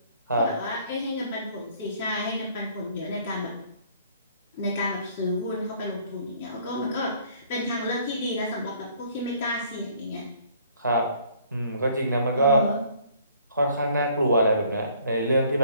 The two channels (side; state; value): both; inverted; correlation -0.58